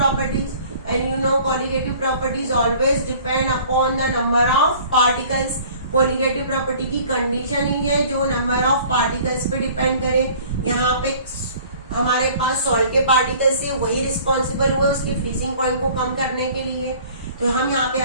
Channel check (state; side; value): inverted; both; correlation -0.50